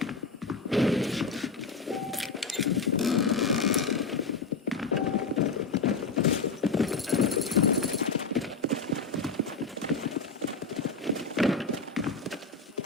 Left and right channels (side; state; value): right; quieter; 4.1 dB